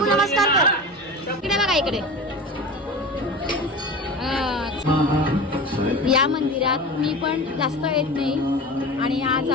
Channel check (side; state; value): both; normal; correlation 0.31